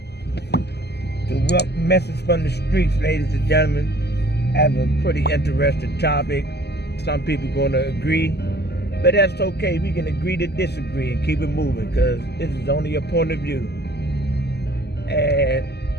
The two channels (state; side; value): late; right; 0.48 ms